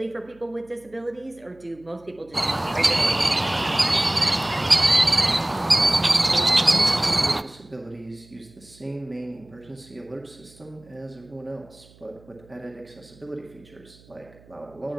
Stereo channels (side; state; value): right; noise; hum, 26 dB below the sound